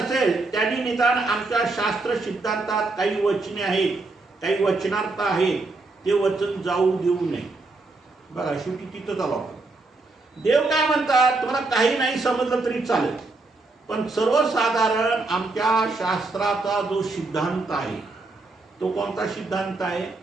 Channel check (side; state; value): left; quieter; 3.4 dB